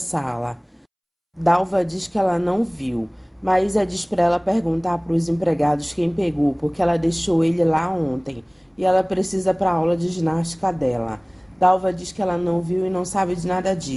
Dalva diz que ela não viu. Maísa diz para ela perguntar para os empregados quem pegou, porque ela deixou ele lá ontem e ela precisa para a aula de ginástica dela. Dalva diz que ela não viu e não sabe de nada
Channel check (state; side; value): identical; both; correlation 1.00